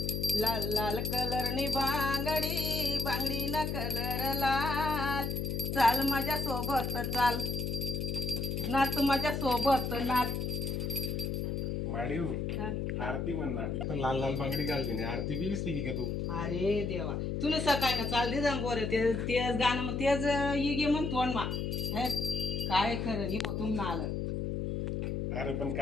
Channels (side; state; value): left; noise; hum, 1 dB below the sound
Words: लाल लाल कलरनी बांगडी बांगडी ना कलर लाल चाल माझ्या सोबत चाल नाच माझ्या सोबत नाच माडीव हा. आरती म्हणणार पण लाल लाल बांगडी घालते ना आरती बी विसली की का तू. अरे देवा तुला सकाळी ना चाल दे जा बोरे तेच गाणं मग तेच ये म्हणतो मा हे काय खरं नि तुम ना आलं अरे पण